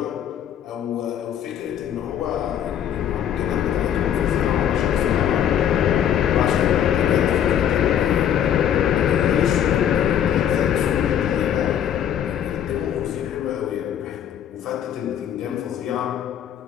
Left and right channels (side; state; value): right; quieter; 9.6 dB